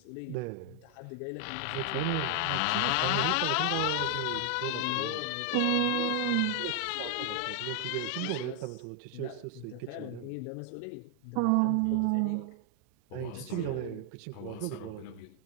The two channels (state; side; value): different; both; correlation 0.00